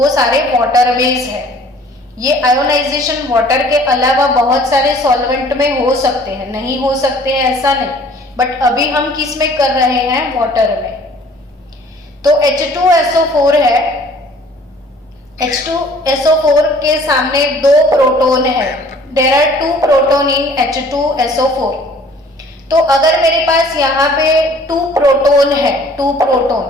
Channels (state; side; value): normal; both; correlation 0.53